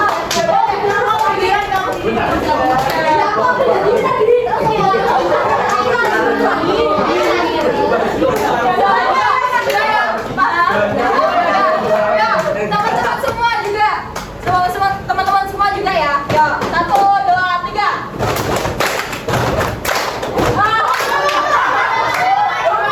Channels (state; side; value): identical; both; correlation 1.00